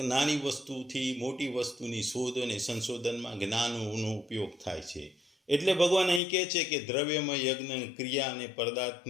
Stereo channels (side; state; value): right; drops out; at 6.2 s